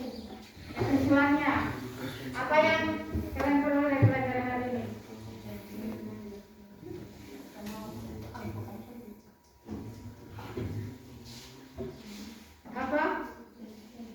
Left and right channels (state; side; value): identical; both; correlation 1.00